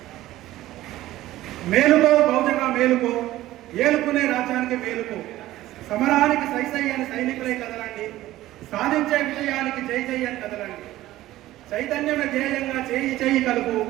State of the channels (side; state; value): left; quieter; 15.5 dB